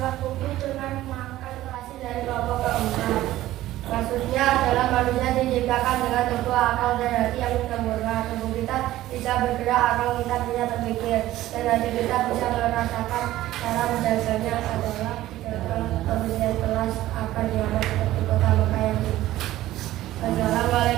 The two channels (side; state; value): left; quieter; 15.1 dB